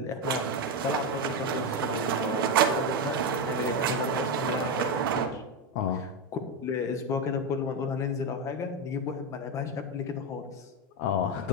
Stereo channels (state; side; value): normal; both; correlation 0.10